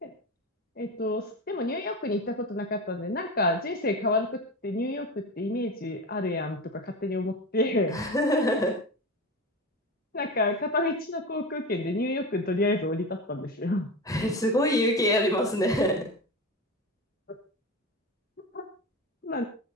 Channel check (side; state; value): both; normal; correlation 0.24